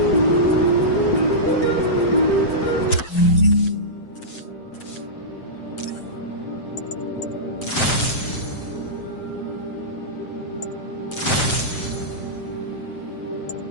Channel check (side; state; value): right; late; 7.7 ms